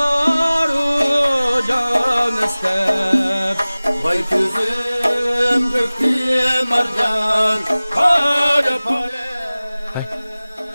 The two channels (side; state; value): both; inverted; correlation -0.99